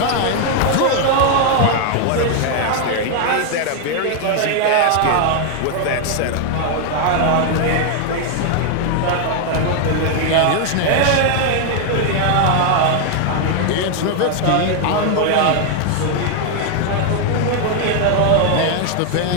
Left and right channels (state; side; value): different; both; correlation 0.00